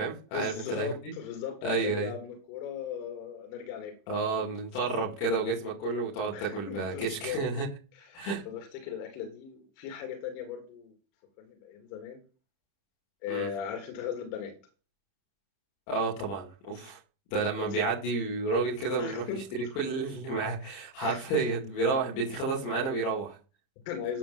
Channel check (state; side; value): late; right; 30 ms